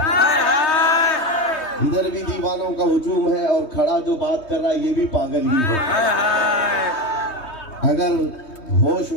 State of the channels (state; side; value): late; right; 3.2 ms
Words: ادھر بھی دیوانوں کا ہجوم ہے اور کھڑا جو بات کر رہا ہے یہ بھی پاگل ہی ہے۔ اگر ہوش